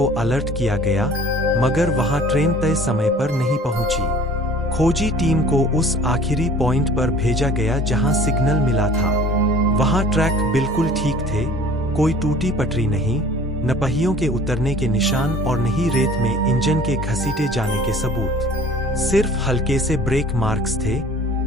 अलर्ट किया गया, मगर वहां ट्रेन तय समय पर नहीं पहुंची। खोजी टीम को उस आखिरी पॉइंट पर भेजा गया जहां सिग्नल मिला था। वहां ट्रैक बिल्कुल ठीक थे, कोई टूटी पटरी नहीं, न पहियों के उतरने के निशान और न ही रेत में इंजन के घसीटे जाने के सबूत। सिर्फ हल्के से ब्रेक मार्क्स थे,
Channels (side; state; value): both; normal; correlation 0.48